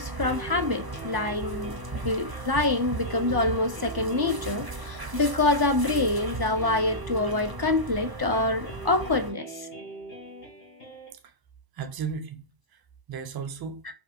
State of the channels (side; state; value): left; late; 1.0 ms